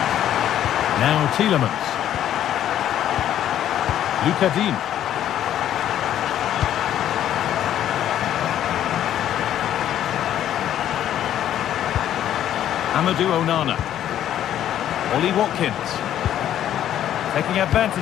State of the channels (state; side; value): quieter; right; 11.2 dB